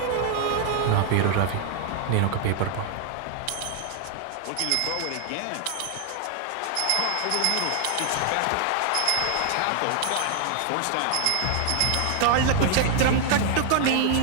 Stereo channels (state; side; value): different; both; correlation 0.00